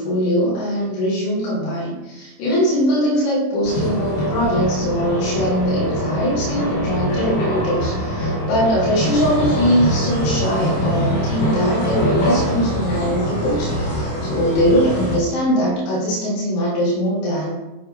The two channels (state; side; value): late; right; 27 ms